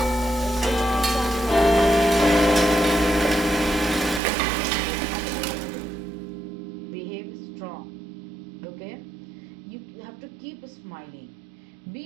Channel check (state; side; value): drops out; left; at 4.2 s